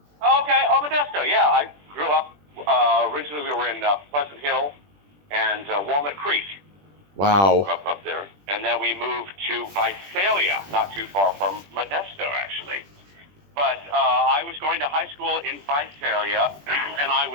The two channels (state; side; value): late; left; 20 ms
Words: Oh, Modesto. Yeah, I grew up. Originally, we were in Pleasant Hill and Walnut Creek. Wow. Up there, and then we moved to Visalia, not too far from Modesto, actually. But I was going to high school in Visalia, and I